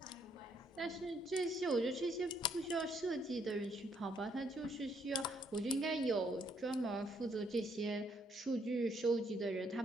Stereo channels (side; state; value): both; normal; correlation 0.71